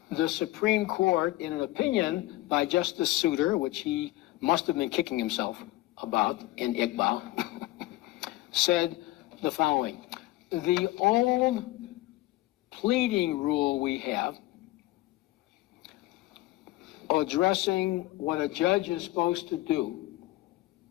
the Supreme Court, in an opinion by Justice Souter, which he must have been kicking himself about in Iqbal, said the following: the old pleading rule we have addressing what a judge is supposed to do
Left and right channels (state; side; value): quieter; right; 18.2 dB